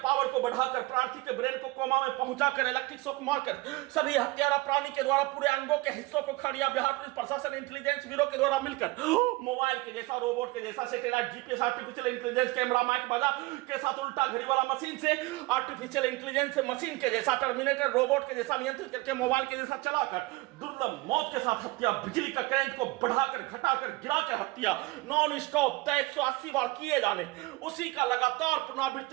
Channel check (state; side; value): quieter; left; 22.0 dB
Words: पावर को बढ़ाकर प्रार्थी के ब्रेन को कोमा में पहुंचाकर इलेक्ट्रिक शॉक मारकर सभी हत्यारा प्राणी के द्वारा पूरे अंगों के हिस्सों को खड़िया बिहार पुलिस प्रशासन इंटेलिजेंस ब्यूरो के द्वारा मिलकर मोबाइल के जैसा, रोबोट के जैसा, satellite, GPS, artificial intelligence, camera, mic बाजा के साथ उल्टा घड़ी वाला मशीन से आर्टिफिशियल इंटेलिजेंस मशीन के जैसा, टर्मिनेटर रोबोट के जैसा नियंत्रित करके मोबाइल के जैसा चलाकर दुर्लभ मौत के साथ हत्या, बिजली का करंट को बढ़ाकर घटाकर गिराकर हत्या, नॉन स्टॉप 180 बार किए जाने, उसी का लगातार